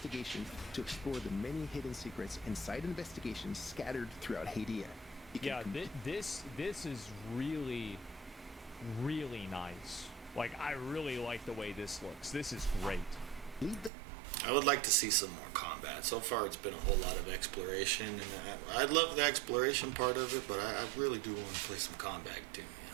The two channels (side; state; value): left; drops out; at 13.9 s